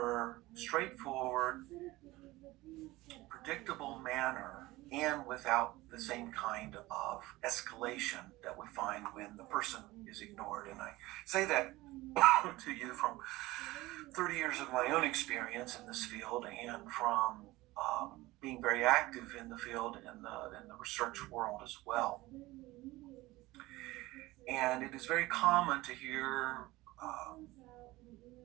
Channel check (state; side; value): quieter; left; 19.3 dB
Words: straightforward, predictable manner, and without the same kind of escalation that we find when the person is ignored. And I say that to you from 30 years of my own experience in this field, and from being very active in the field in the research world as well. And it is very common to hear